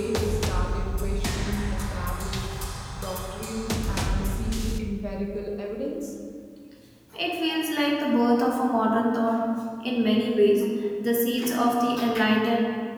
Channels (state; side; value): identical; both; correlation 1.00